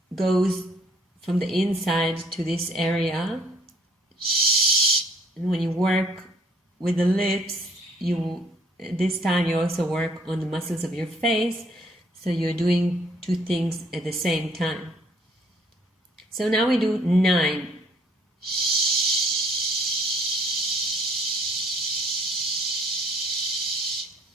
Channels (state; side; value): normal; both; correlation 0.61